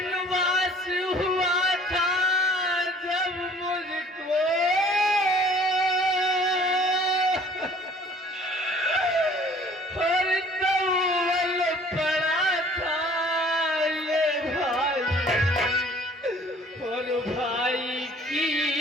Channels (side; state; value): both; normal; correlation 0.53